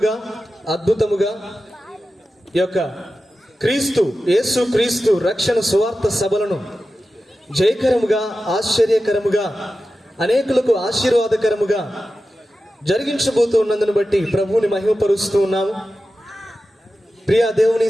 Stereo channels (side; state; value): both; normal; correlation 0.93